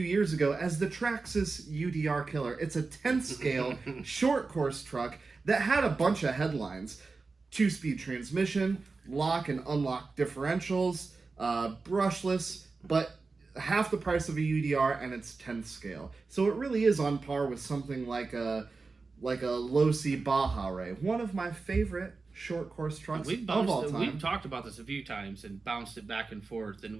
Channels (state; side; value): quieter; left; 4.1 dB